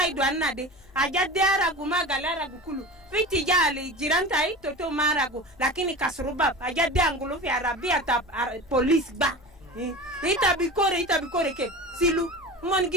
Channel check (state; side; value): normal; both; correlation 0.33